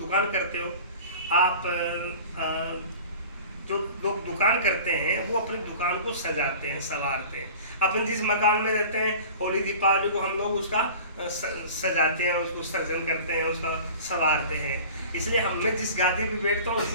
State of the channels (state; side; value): inverted; both; correlation -0.41